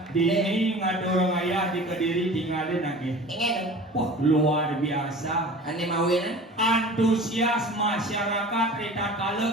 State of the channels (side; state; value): both; normal; correlation 0.40